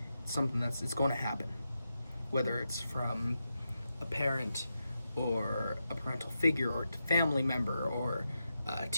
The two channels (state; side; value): inverted; both; correlation -0.87